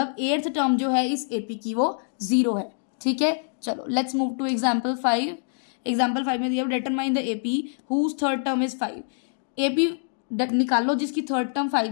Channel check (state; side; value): silent; right; digital silence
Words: 8th टर्म जो है इस AP की वो 0 है। ठीक है, चलो let's move to example 5। Example 5 में दिया determine the AP whose third term is 5। AP निकालो जिसकी थर्ड टर्म 5